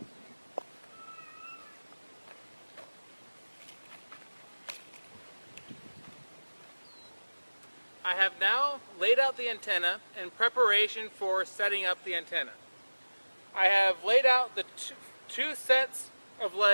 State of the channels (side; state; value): both; inverted; correlation -1.00